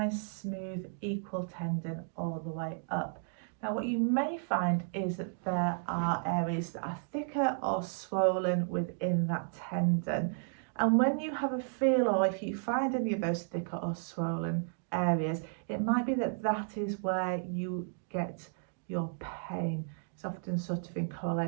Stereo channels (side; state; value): left; silent; digital silence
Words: smooth, equal tendon all the way up. Now what you may find is that there are areas that are thicker or swollen within that tendon. And when you have a feel, or if you find any of those thicker or swollen areas, it might be that that is where you get your pain. It's often sort of in